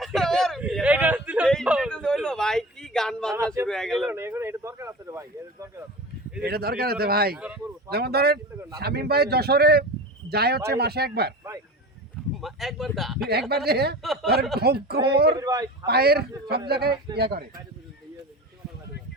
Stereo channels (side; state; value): both; normal; correlation 0.33